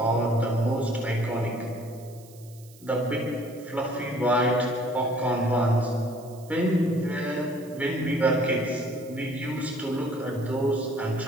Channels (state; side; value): noise; right; hiss, 24 dB below the sound